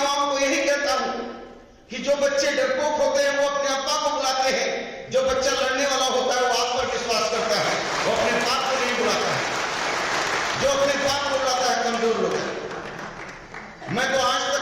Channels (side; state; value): both; identical; correlation 1.00